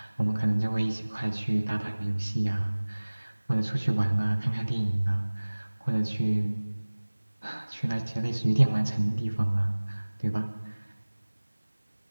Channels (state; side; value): inverted; both; correlation -1.00